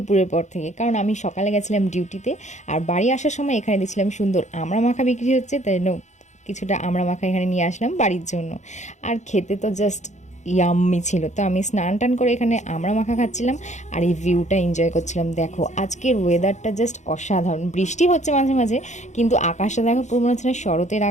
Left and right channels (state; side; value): late; right; 0.34 ms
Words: পর থেকে, কারণ আমি সকালে গেছিলাম ডিউটিতে, আর বাড়ি আসার সময় এখানে দেখছিলাম সুন্দর আমড়া মাখা বিক্রি হচ্ছে, তাই কিছুটা আমড়া মাখা এখানে নিয়ে আসলাম বাড়ির জন্য। আর খেতে তো জাস্ট ইয়াম্মি ছিল। তো আমি স্নান টান করে এখানে আমড়া মাখা খাচ্ছিলাম আর এই ভিউটা এনজয় করছিলাম। দেখো আজকের ওয়েদারটা জাস্ট অসাধারণ, বৃষ্টি হচ্ছে মাঝে মাঝে, কিন্তু আকাশটা দেখো পুরো মনে হচ্ছে না শরতের